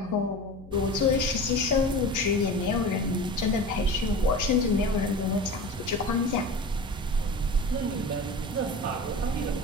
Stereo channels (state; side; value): noise; left; hum, 20 dB below the sound